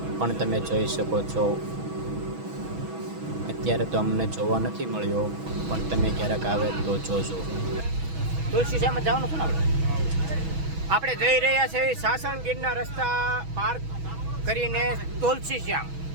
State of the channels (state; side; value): late; left; 6.2 ms